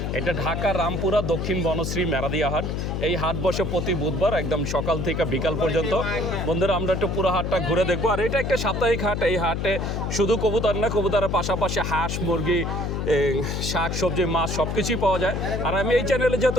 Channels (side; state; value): left; noise; hum, 2 dB below the sound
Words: এটা ঢাকা রামপুরা দক্ষিণ বনশ্রী মেরাদিয়া হাট। এই হাট বসে প্রতি বুধবার একদম সকাল থেকে বিকাল পর্যন্ত। বন্ধুরা, আমরা একটু পুরো হাটটা ঘুরে দেখবো। আর এটা একটা সাপ্তাহিক হাট। এই হাটে শুধু কবুতর না, কবুতরের পাশাপাশি হাঁস, মুরগি, শাক সবজি, মাছ সব কিছুই পাওয়া যায়। আর আমি এই চ্যানেলে